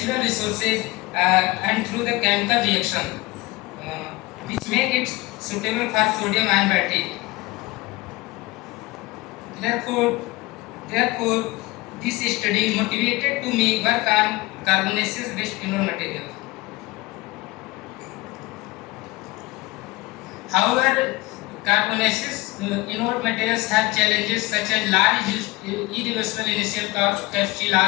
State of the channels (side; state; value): right; quieter; 21.8 dB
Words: resources and through the chemical reaction, which make it suitable for sodium ion battery. Therefore, this study motivated to me work on carbonaceous based anode material. However, carbonaceous anode materials have challenges such as large irreversible initial capacity